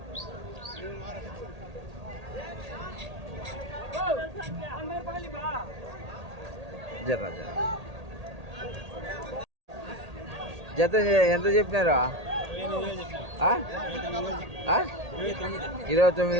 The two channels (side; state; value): left; late; 1.8 ms